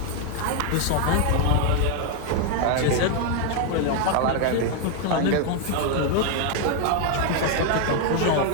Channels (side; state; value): both; different; correlation 0.00